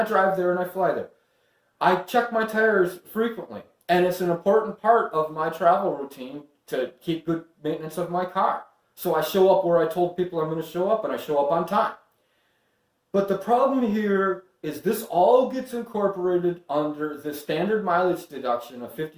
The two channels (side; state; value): both; identical; correlation 1.00